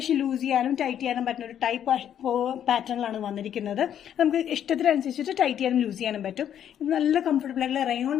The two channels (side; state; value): right; quieter; 9.8 dB